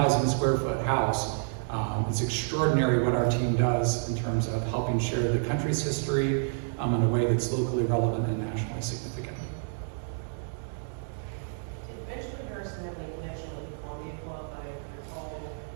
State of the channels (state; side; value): silent; left; digital silence